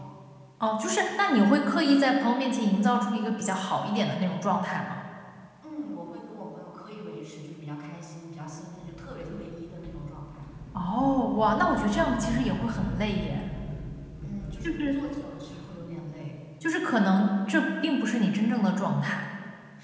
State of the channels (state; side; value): identical; both; correlation 1.00